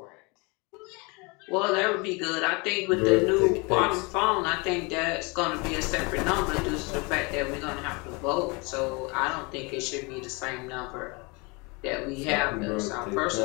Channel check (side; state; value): right; quieter; 28.5 dB